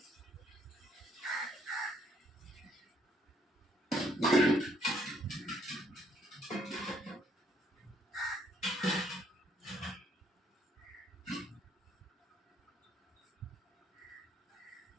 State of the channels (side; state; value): both; normal; correlation 0.68